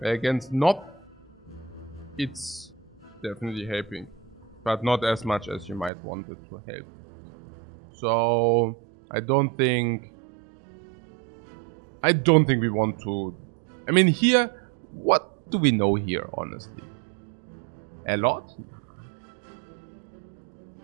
Against Nob, it's definitely helping, but not as much as you might want it to help. So I don't think we want to... I mean, here, what do we know here, honestly? A lot?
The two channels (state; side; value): drops out; left; at 5.9 s